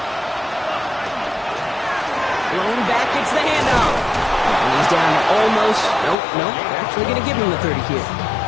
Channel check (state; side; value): drops out; right; at 6.2 s